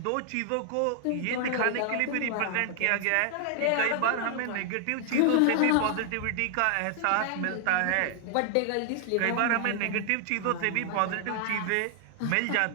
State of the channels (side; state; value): both; different; correlation 0.00